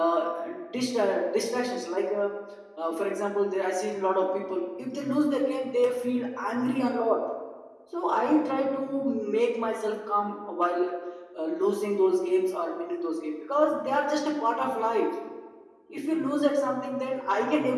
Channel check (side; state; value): both; identical; correlation 1.00